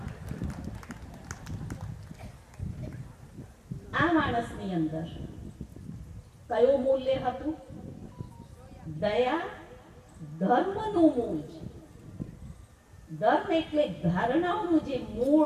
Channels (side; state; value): both; identical; correlation 1.00